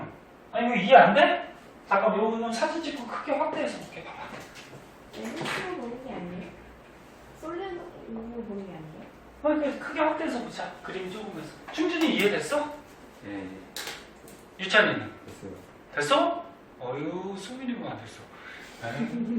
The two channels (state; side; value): identical; both; correlation 1.00